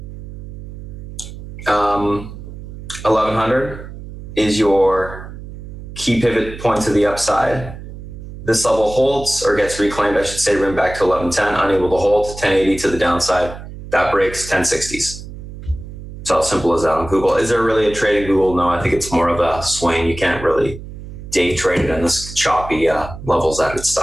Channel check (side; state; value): right; noise; hum, 12 dB below the sound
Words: 1100 is your key pivot point to the upside. This level holds or gets reclaimed, I should say, room back to 1110, unable to hold, 1080 to the downside. That breaks 1060s. It's how simple as that on Google. Is there really a trade in Google? No, I think it's more of a swing. You can't really day trade it in this choppy levels that it's